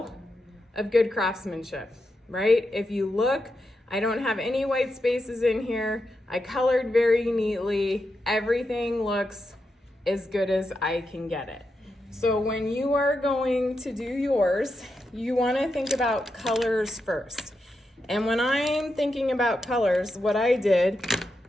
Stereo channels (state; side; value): normal; both; correlation 0.86